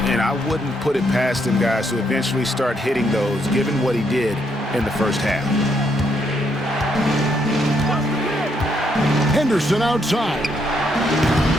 And I wouldn't put it past him, guys, to eventually start hitting those, given what he did in the first half. Henderson outside.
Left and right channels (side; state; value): both; normal; correlation 0.75